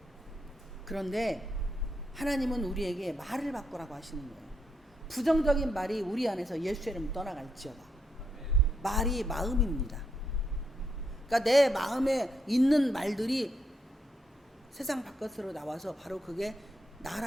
그런데 하나님은 우리에게 말을 바꾸라고 하시는 거예요. 부정적인 말이 우리 안에서 예수의 이름 떠나갈지어다. 말이 마음입니다. 그러니까 내 마음에 있는 말들이 세상 바깥으로 나와서 바로 그게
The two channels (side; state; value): both; normal; correlation 0.79